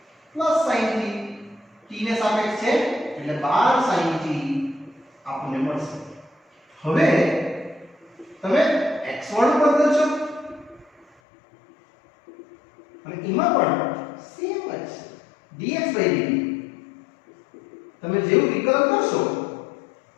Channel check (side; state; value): right; drops out; at 11.1 s